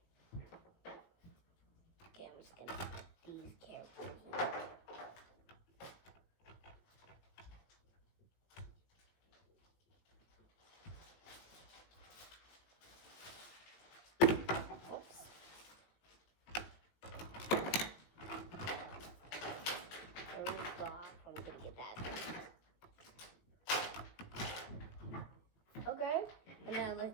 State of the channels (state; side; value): late; right; 18 ms